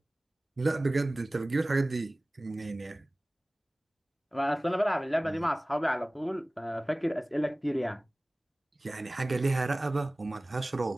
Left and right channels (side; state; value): both; normal; correlation 0.98